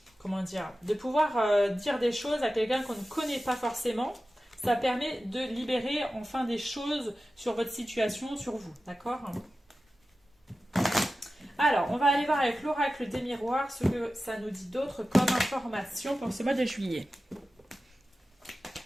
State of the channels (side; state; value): both; normal; correlation 0.94